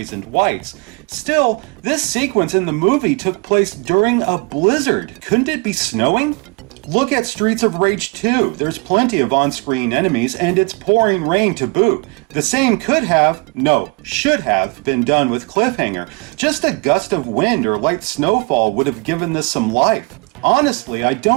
and whites. Still, this sequence in the movie took place during a blizzard. Couldn't it be snowing? Look at Streets of Rage 2. There's plenty of on-screen enemies, and it's pouring rain to boot. The same should have been done with Cliffhanger. Just a gust of wind or light snowfall would have given this some life. Honestly, I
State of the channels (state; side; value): quieter; left; 29.8 dB